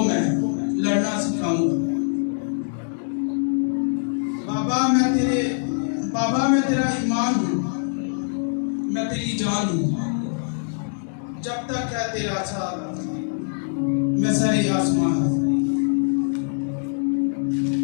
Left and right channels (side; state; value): right; silent; digital silence